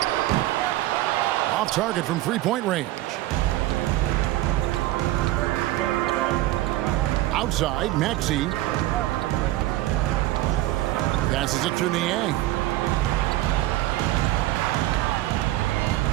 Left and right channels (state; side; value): quieter; left; 16.1 dB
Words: Off target from three-point range. Outside, Maxey. Passes it to Niang.